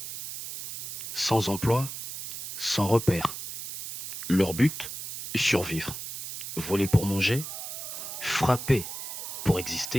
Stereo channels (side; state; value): right; noise; hiss, 8 dB below the sound